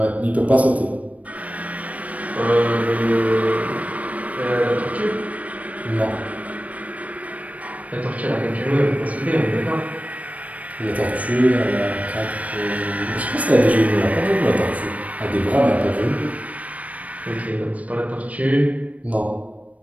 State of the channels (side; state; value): left; late; 0.068 ms